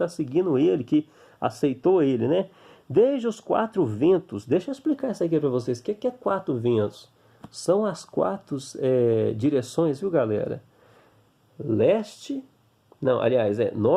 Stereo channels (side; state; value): both; identical; correlation 1.00